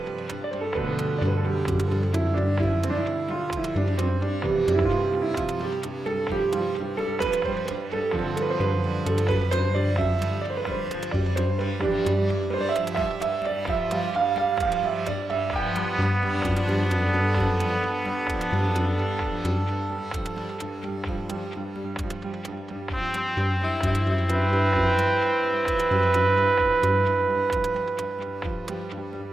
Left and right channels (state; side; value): normal; both; correlation 0.90